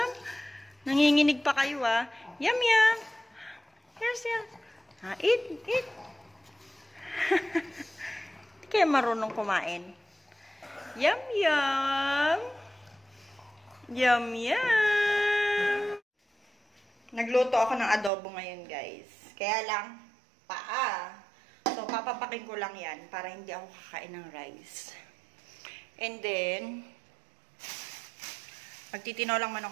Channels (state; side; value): drops out; left; at 18.1 s